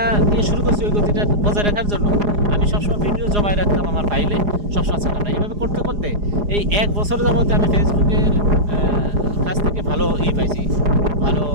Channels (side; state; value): left; late; 4.8 ms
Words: দিয়ে শুরু করছি, ওই গতিটা বজায় রাখার জন্য আমি সবসময় ভিডিও জমায় রাখতাম আমার ফাইলে, সবসময় ছাড়তাম না। এইভাবে করতে করতে এই 1 বছর যাবতে আমি ফেসবুকের কাছ থেকে ভালো পাইছি, ভালো